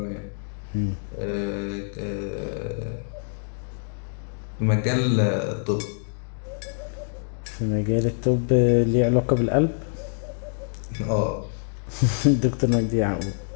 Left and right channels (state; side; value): silent; right; digital silence